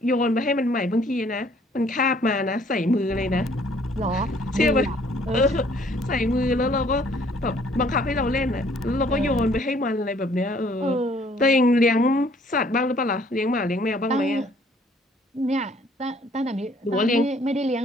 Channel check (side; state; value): both; normal; correlation 0.61